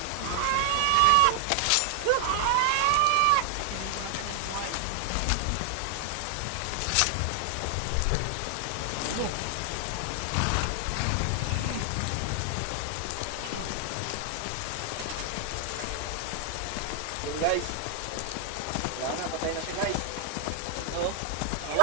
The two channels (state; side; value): different; both; correlation 0.00